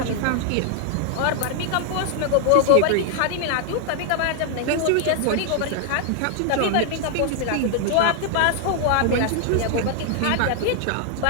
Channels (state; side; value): different; both; correlation 0.00